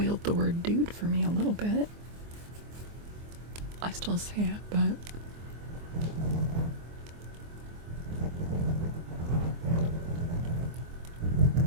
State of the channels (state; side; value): late; left; 24 ms